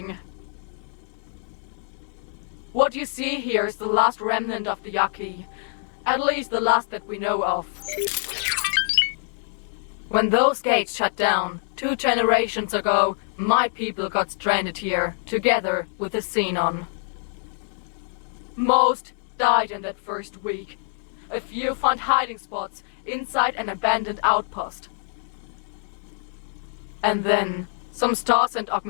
What you see here is the last remnant of the Yaki. At least the last that we know of. When those gates shut down, 2 generations ago, my people got stranded here, together with the Xenon. Most died in that first week. A few found hiding spots inside an abandoned outpost. And then, some stars and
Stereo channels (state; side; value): silent; right; digital silence